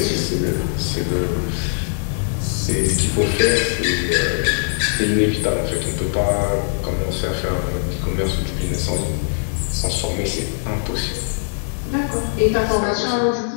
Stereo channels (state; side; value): silent; right; 65 dB below the other